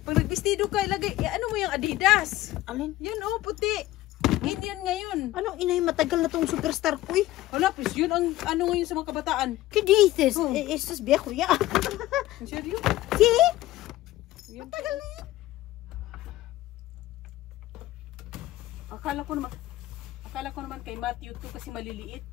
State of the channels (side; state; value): right; quieter; 16.2 dB